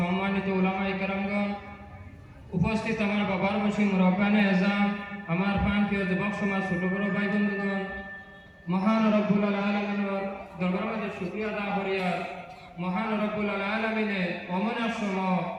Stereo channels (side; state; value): both; identical; correlation 1.00